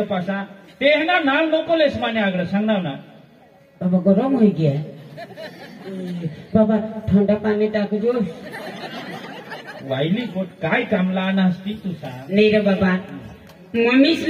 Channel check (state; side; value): identical; both; correlation 1.00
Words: पासा ते ना नाव नको लेस माने आगळ सांगणार ना बाबा गरम होई गया बाबा ठंडा पाणी टाकजो वाईली गोट काय कामला आणा असती तू सांग नाही रे बाबा